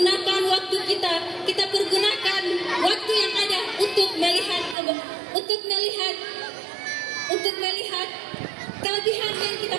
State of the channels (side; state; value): left; drops out; at 4.8 s